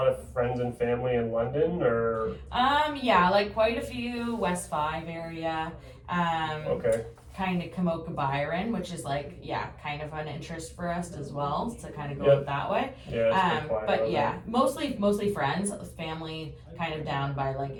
of friends and family in London, or? Yeah, like quite a few West 5 area. Okay. Kind of Kamoka Byron, which is like, kind of an interest for us as well to kind of go that way. Yeah, but yeah, mostly friends, family kind of down by like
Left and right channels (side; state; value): both; identical; correlation 1.00